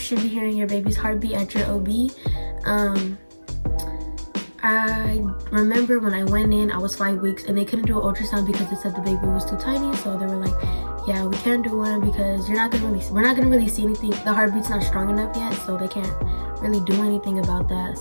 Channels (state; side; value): inverted; both; correlation -1.00